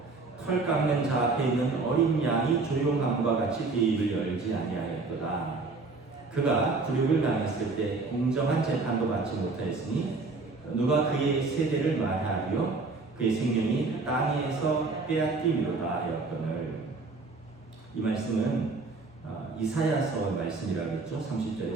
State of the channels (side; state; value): left; quieter; 3.8 dB